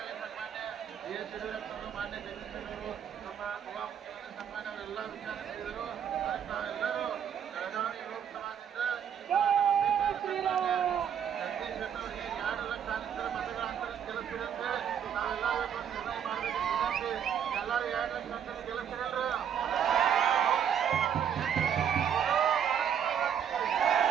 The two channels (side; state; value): left; quieter; 8.6 dB